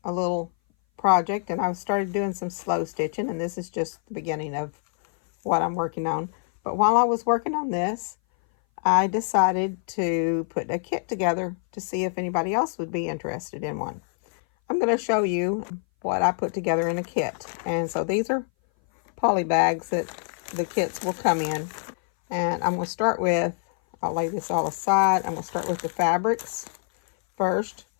a little project and I've started doing some slow stitching, and this is just the beginning of what I'm working on. But while I was working on this, I decided to put a kit together to see if anybody else would be interested in one. I'm going to show you what I put together in a kit. And so these are poly bags that the kits will come in. And I'm going to start with, I'll lay this all aside. I'm going to start with the fabrics first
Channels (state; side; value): silent; right; 59 dB below the other